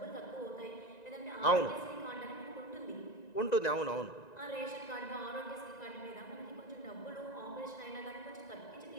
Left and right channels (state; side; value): late; right; 1.9 ms